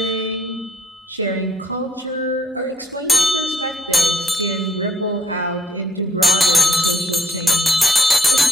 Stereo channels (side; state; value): both; normal; correlation 0.68